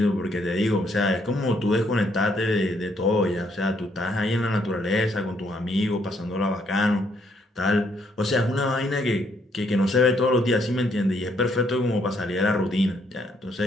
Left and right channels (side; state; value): both; normal; correlation 0.71